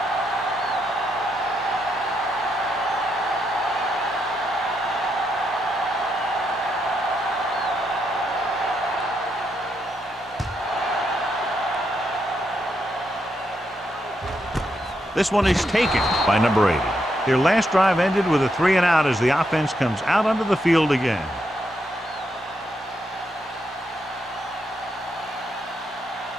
This one is taken by number 80. Their last drive ended with a 3-and-out as the offense comes out onto the field again.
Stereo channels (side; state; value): both; normal; correlation 0.80